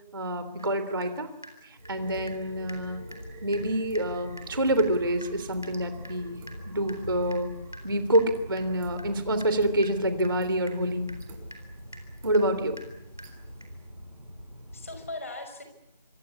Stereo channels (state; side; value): inverted; both; correlation -0.56